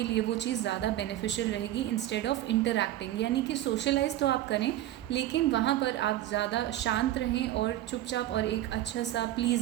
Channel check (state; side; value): quieter; left; 13.7 dB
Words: लिए वो चीज़ ज़्यादा बेनिफिशियल रहेगी इंस्टेड ऑफ इंटरैक्टिंग। यानी कि सोशलाइज तो आप करें लेकिन वहाँ पर आप ज़्यादा शांत रहें और चुपचाप और एक अच्छा सा